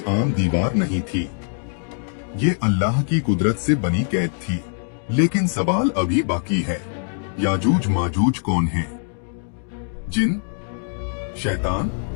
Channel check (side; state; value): right; silent; 64 dB below the other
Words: आम दीवार नहीं थी, ये अल्लाह की कुदरत से बनी कैद थी। लेकिन सवाल अभी बाकी है, याजूज माजूज कौन है? जिन, शैतान